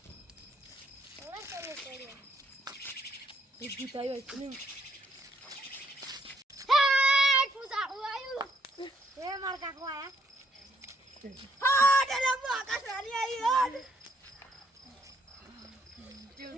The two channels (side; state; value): both; normal; correlation 0.71